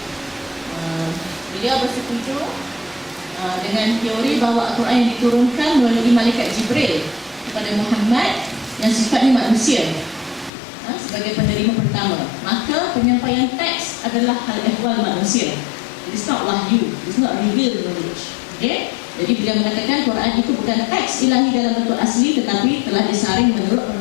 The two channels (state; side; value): drops out; right; at 10.5 s